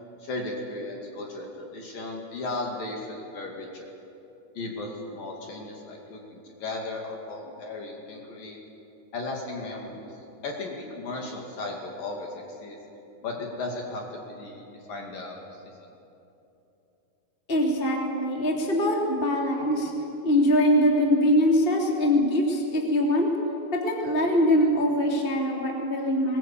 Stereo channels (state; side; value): late; right; 2.7 ms